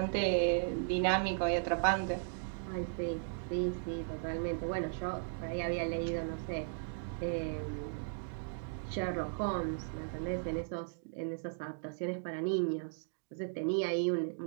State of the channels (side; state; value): left; silent; digital silence